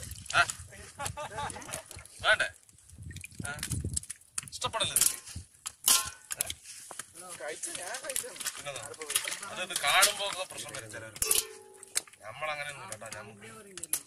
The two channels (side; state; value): both; identical; correlation 1.00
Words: വേണ്ടേ ഇഷ്ടപ്പെടല്ലേ അതൊക്കെ കാണുമ്പോ പ്രശ്നം വരും ചിലർ. നമ്മളങ്ങനെയൊന്നും കേട്ടോ,